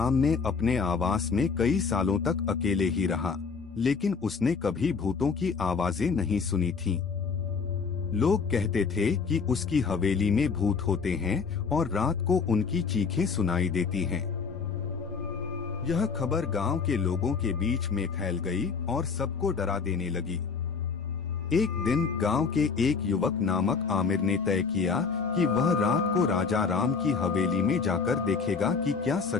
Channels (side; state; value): right; quieter; 5.3 dB